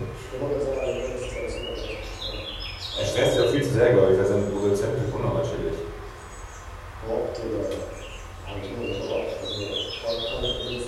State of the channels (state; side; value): identical; both; correlation 1.00